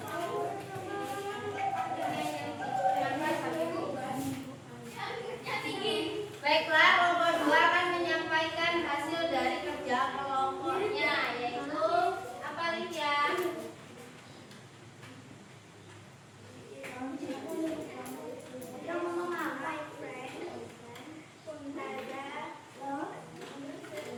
kedua akan menyampaikan hasil dari kerja kelompoknya, yaitu apa Lydia?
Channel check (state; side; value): identical; both; correlation 1.00